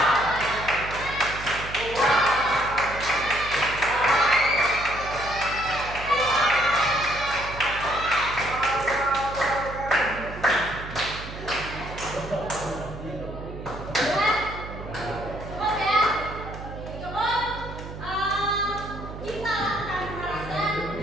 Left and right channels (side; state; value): right; noise; hum, 11 dB below the sound